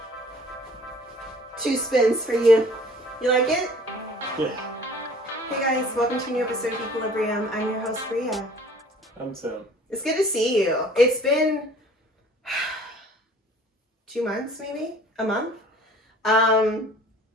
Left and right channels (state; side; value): normal; both; correlation 0.51